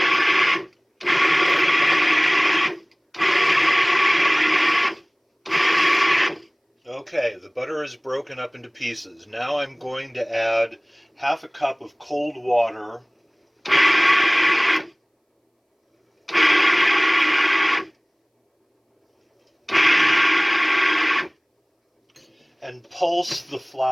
Okay, the butter is broken up into pieces. Now I'm going to add half a cup of cold water and pulse the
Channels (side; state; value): both; identical; correlation 1.00